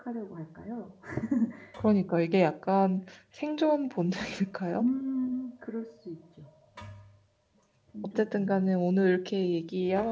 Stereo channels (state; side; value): identical; both; correlation 1.00